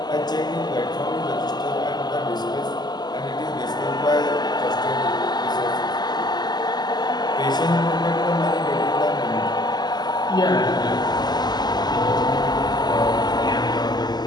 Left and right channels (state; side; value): late; right; 0.20 ms